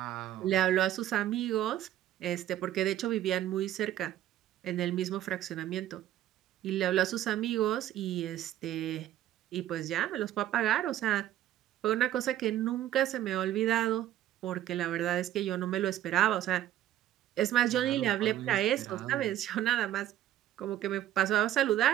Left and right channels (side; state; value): left; quieter; 12.7 dB